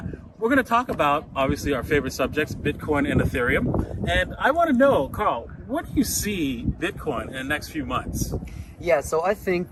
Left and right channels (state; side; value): identical; both; correlation 1.00